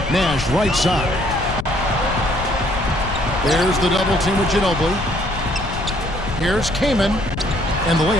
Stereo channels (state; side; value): noise; left; rumble, 7 dB below the sound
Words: Nash right side. There's the double team with Ginobili. Here's Kaman. And the